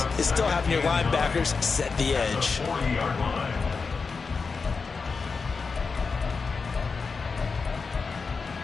is still having your linebackers set the edge.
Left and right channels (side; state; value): right; quieter; 4.8 dB